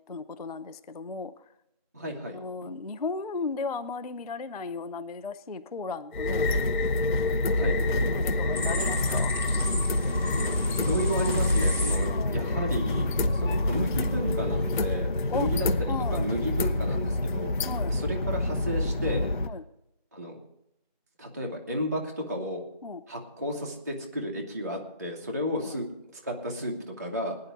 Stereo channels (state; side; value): inverted; both; correlation -0.57